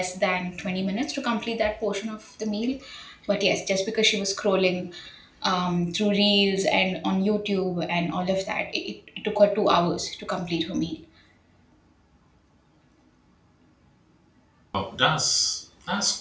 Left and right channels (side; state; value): both; identical; correlation 1.00